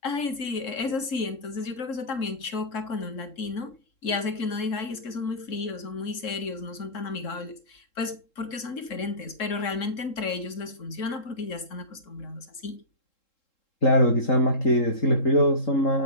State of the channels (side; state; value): right; late; 3.7 ms